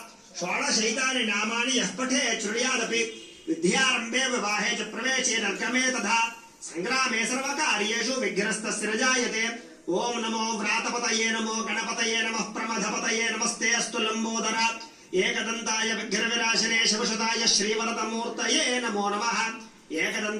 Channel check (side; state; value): both; identical; correlation 1.00